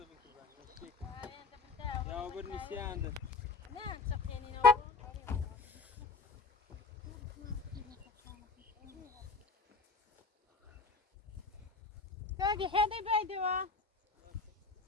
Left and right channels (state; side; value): quieter; right; 4.1 dB